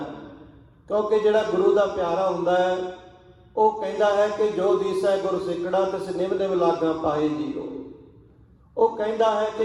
ਕਿਉਂਕਿ ਜਿਹੜਾ ਗੁਰੂ ਦਾ ਪਿਆਰਾ ਹੁੰਦਾ ਹੈ ਉਹ ਕਹਿੰਦਾ ਹੈ ਕਿ ਜੋ ਦੀਸੈ ਗੁਰਸਿੱਖੜਾ ਤਿਸ ਨਿਮ ਨਿਮ ਲਾਗਾਂ ਪਾਏ ਜੀਓ। ਉਹ ਕਹਿੰਦਾ ਹੈ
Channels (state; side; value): identical; both; correlation 1.00